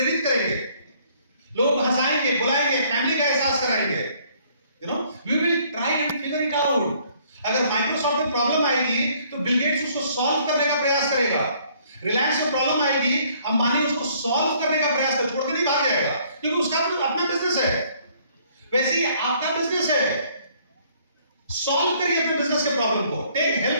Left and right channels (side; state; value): both; inverted; correlation -0.62